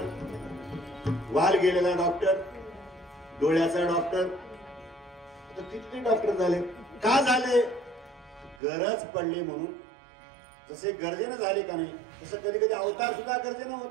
वाल गेलेला डॉक्टर, डोळ्याचा डॉक्टर. आता किती डॉक्टर झाले? का झाले? गरज पडली म्हणून. जसे गरजेनं झाले का नाही तसं कधी कधी अवतार सुद्धा गरजेनं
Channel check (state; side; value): drops out; left; at 8.6 s